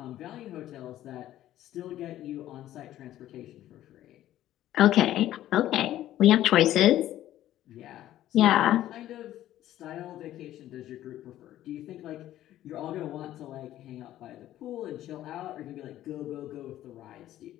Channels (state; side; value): quieter; right; 13.3 dB